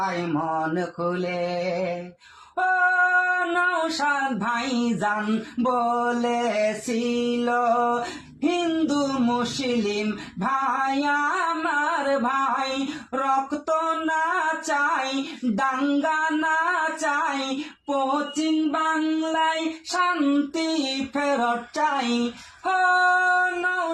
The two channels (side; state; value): both; identical; correlation 1.00